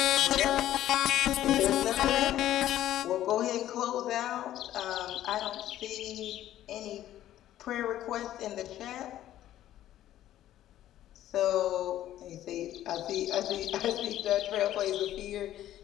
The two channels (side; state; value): right; quieter; 12.8 dB